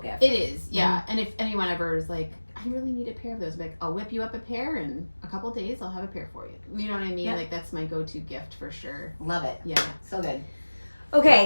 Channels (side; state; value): both; inverted; correlation -1.00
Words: It is, yeah. And if anyone ever is like, I really need a pair of those, I'm like, I'll whip you up a pair, and a couple days I'll have a pair for you. You know what I mean? Yeah. Like that's my go-to gift for sure. Love it. Yeah. So good.